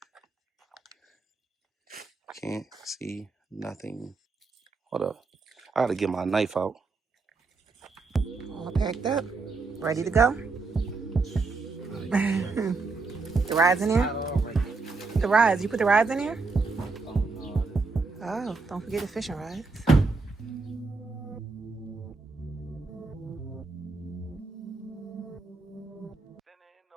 Can't see nothing. Hold up. I gotta get my knife out. All packed up, ready to go. The rides in there? The rides. You put the rides in there? Oh, don't forget the fishing rides.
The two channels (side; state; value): left; quieter; 4.0 dB